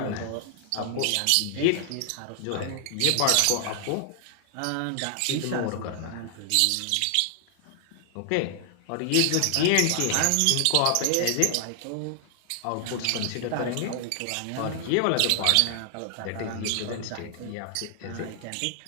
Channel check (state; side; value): different; both; correlation 0.00